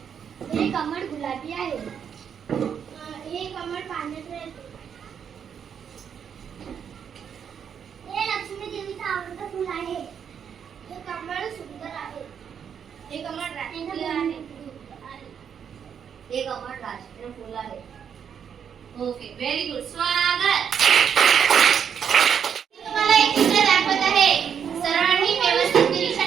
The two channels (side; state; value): left; quieter; 7.8 dB